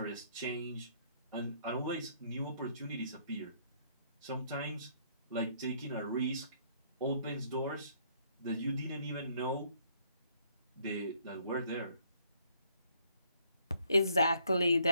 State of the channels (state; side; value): inverted; both; correlation -0.66